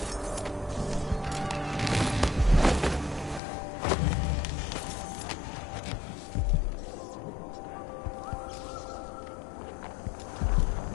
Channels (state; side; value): drops out; right; at 3.4 s